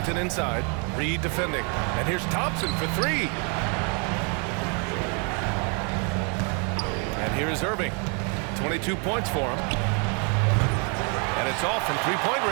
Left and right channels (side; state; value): left; quieter; 36.2 dB